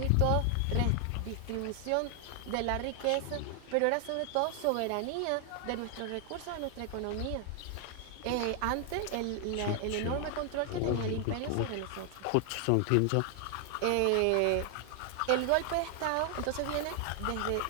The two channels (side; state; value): both; different; correlation 0.00